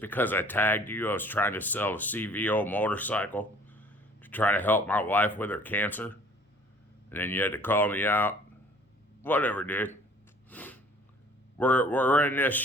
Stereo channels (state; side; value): normal; both; correlation 0.53